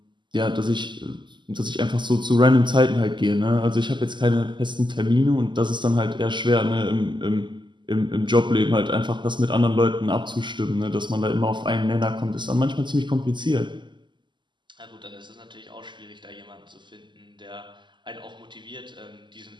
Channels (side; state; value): left; late; 0.22 ms